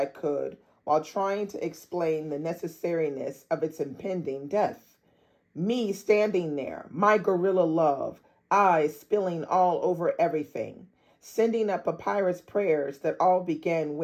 could while trying to explain the necessariness of its impending death. Me standing there, my gorilla love, eyes spilling all over everything, sending up papyrus prayers that all began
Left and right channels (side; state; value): both; identical; correlation 1.00